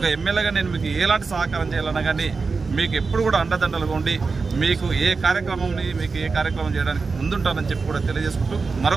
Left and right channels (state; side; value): quieter; left; 4.5 dB